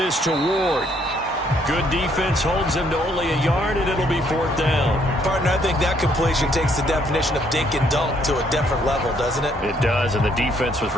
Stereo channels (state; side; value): normal; both; correlation 0.68